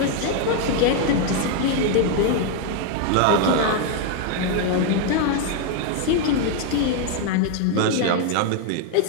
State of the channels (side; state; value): both; different; correlation 0.00